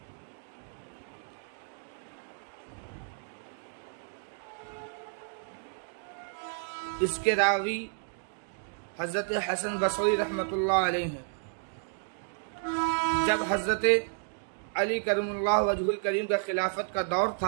اس کے راوی حضرت حسن بصری رحمۃ اللہ علیہ ہیں۔ جب حضرت علی کرم اللہ وجہ الکریم کا خلافت کا دور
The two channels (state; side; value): silent; left; 57 dB below the other